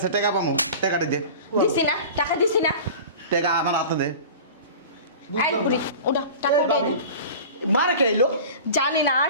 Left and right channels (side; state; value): both; inverted; correlation -0.37